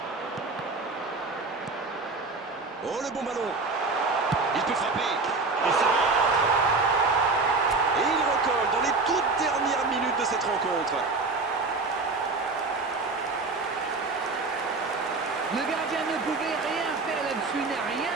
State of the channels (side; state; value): left; quieter; 3.8 dB